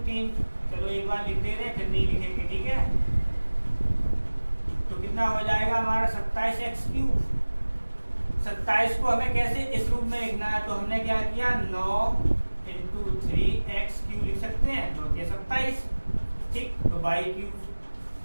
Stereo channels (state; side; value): inverted; both; correlation -1.00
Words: 3। चलो एक बार लिख दे रहे फिर नहीं लिखेंगे। ठीक है, तो कितना हो जाएगा हमारा 27x क्यूब। 27 को हमें कैसे इस रूप में लिखना है, तो हमने क्या किया, 9 इंटू 3x क्यूब लिख सकते हैं, 9 के 27। ठीक, तो y क्यूब,